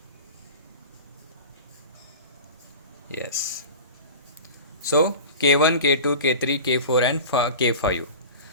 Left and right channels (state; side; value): inverted; both; correlation -0.35